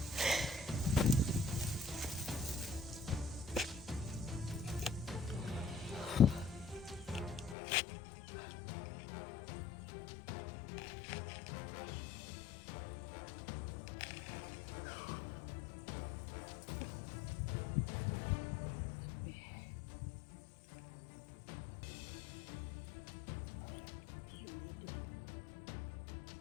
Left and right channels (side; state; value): right; drops out; at 7.6 s